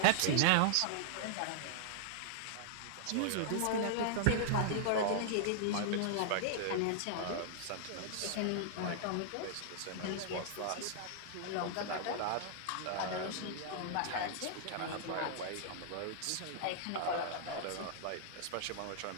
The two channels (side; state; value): both; different; correlation -0.01